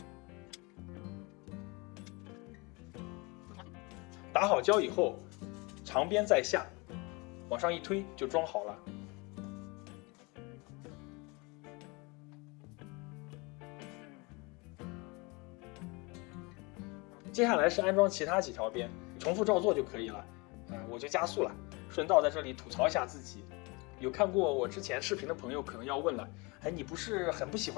打好胶以后，长边在下，往上一推就装好了。接下来是安装其他几条边，重复照做就可以了。我就加速了，顺道在这里吐槽一下自己。有看过我之前视频的朋友可能要问了，你不是很不喜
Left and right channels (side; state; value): right; quieter; 27.7 dB